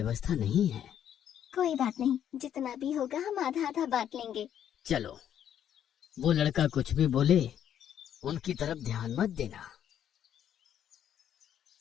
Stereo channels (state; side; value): quieter; right; 9.9 dB